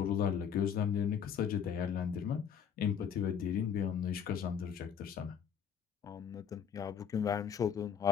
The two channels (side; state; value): right; quieter; 7.8 dB